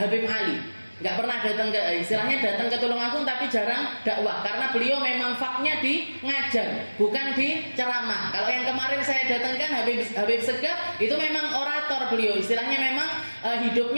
Habib Ali. Nggak pernah datang ke, istilahnya datang ke Tulungagung, tapi jarang dakwah, karena beliau memang faknya di ngajar, bukan di ceramah. Kalau yang kemarin saya datangkan Habib Segaf, itu memang orator beliau, istilahnya memang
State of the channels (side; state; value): both; inverted; correlation -1.00